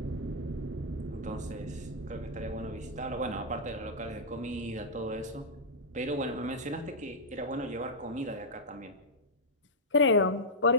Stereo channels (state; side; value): normal; both; correlation -0.08